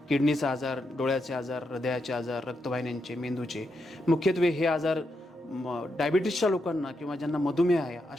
किडनीचा आजार, डोळ्याचे आजार, हृदयाचे आजार, रक्तवाहिन्यांचे, मेंदूचे, मुख्यत्वे हे आजार डायबिटीसच्या लोकांना किंवा ज्यांना मधुमेह आहे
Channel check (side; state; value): both; normal; correlation 0.83